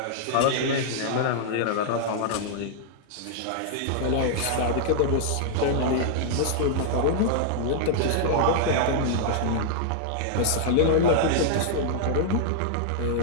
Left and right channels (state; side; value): different; both; correlation -0.01